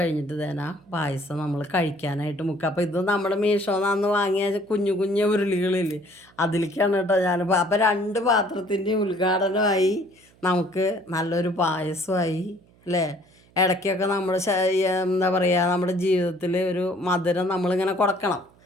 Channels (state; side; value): noise; right; hum, 30 dB below the sound